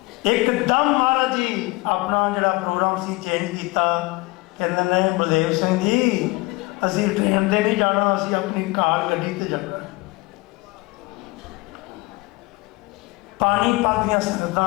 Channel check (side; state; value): right; quieter; 23.6 dB